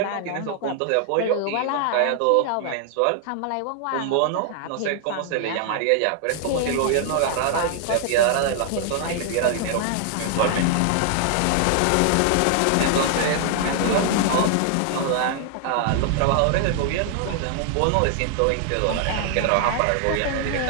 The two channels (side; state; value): both; different; correlation 0.00